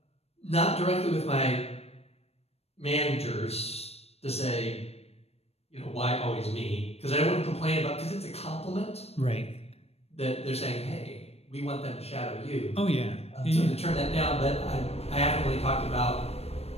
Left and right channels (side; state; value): right; late; 0.30 ms